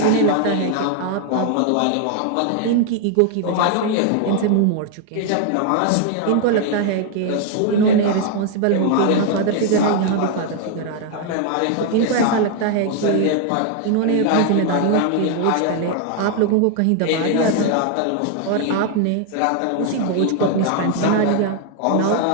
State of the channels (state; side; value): different; both; correlation 0.00